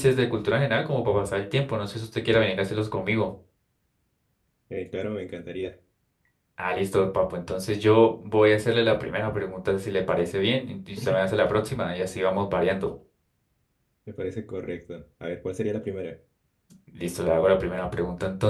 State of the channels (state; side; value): identical; both; correlation 1.00